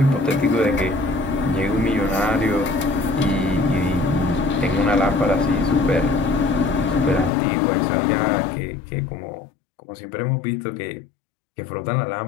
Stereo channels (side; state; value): right; drops out; at 7.3 s